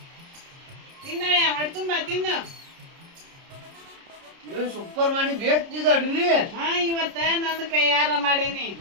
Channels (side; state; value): left; late; 30 ms